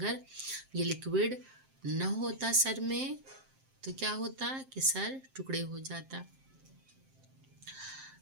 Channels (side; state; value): left; late; 7.6 ms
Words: یہ لکوڈ نہ ہوتا سر میں تو کیا ہوتا کہ سر ٹکڑے ہو جاتا۔